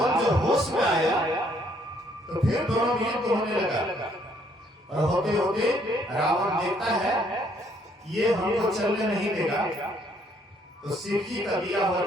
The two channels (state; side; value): normal; both; correlation 0.67